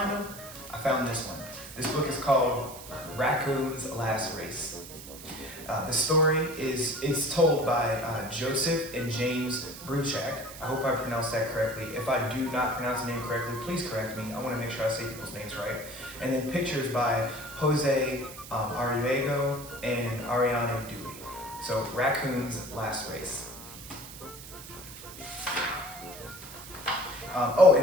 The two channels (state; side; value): noise; right; hiss, 14 dB below the sound